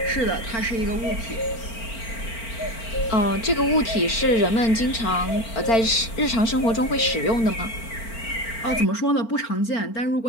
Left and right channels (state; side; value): late; right; 4.4 ms